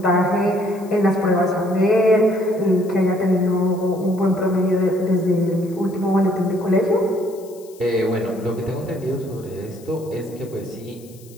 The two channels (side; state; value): left; noise; hiss, 24 dB below the sound